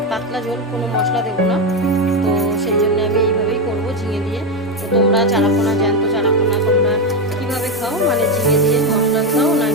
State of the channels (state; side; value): normal; both; correlation 0.10